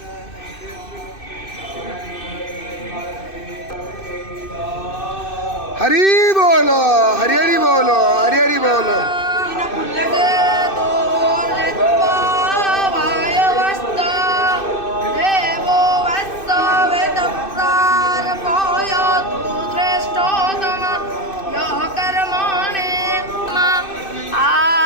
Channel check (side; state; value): right; late; 2.6 ms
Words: हरि बोलो, हरि हरि बोलो, हरि हरि बोलो।